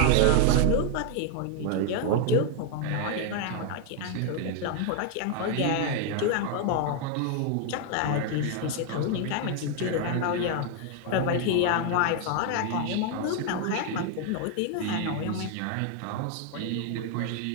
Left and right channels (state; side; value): different; both; correlation 0.00